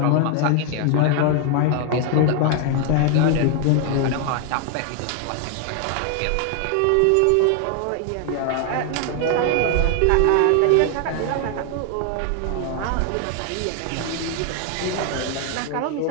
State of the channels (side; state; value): both; different; correlation 0.00